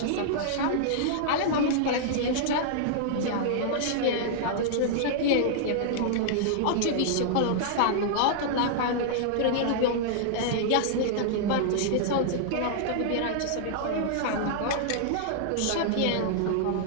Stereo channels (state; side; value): different; both; correlation -0.01